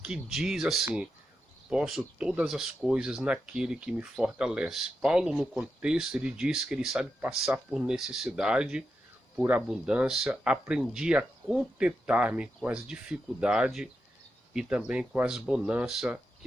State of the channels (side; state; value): both; normal; correlation 0.87